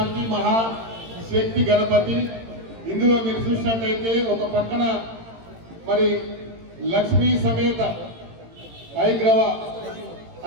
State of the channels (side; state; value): left; late; 18 ms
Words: మహాశక్తి గణపతి. ఇందులో మీరు చూసినట్టయితే ఒక పక్కన మరి లక్ష్మీ సమేత